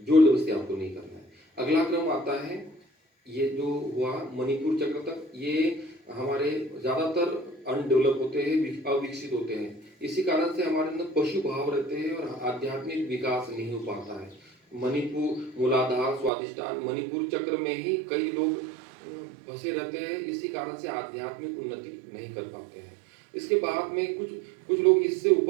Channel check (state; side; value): drops out; left; at 16.3 s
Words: जोर जबरदस्ती आपको नहीं करना है। अगला क्रम आता है, ये जो हुआ मणिपुर चक्र तक, ये हमारे ज़्यादातर अनडेवलप होते हैं, अविकसित होते हैं। इसी कारण से हमारे अंदर पशु भाव रहते हैं और आध्यात्मिक विकास नहीं हो पाता है। मणिपुर, मूलाधार, स्वादिष्टान, मणिपुर चक्र में ही कई लोग फंसे रहते हैं। इसी कारण से आध्यात्मिक उन्नति नहीं कर पाते हैं। इसके बाद में कुछ लोग इससे